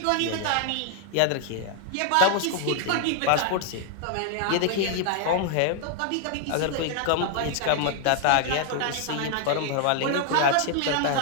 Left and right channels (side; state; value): both; different; correlation 0.00